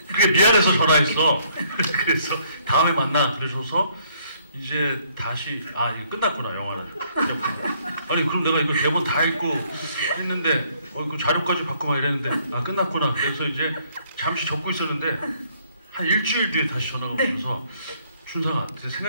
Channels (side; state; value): both; inverted; correlation -0.66